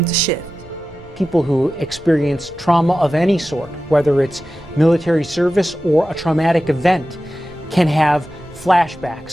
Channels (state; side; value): noise; right; rumble, 22 dB below the sound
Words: to shift. People who experience trauma of any sort, whether it's military service or a traumatic event, can have